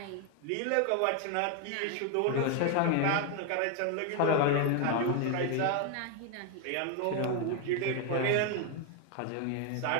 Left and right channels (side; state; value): both; different; correlation 0.01